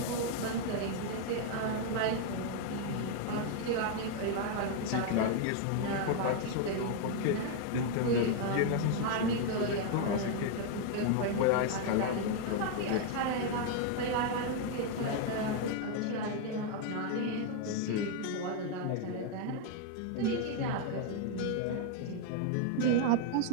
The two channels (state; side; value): different; both; correlation 0.00